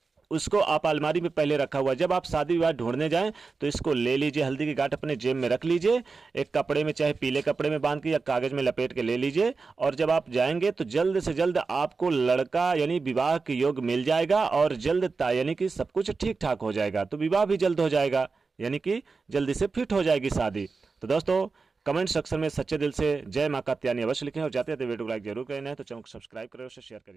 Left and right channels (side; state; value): left; quieter; 4.4 dB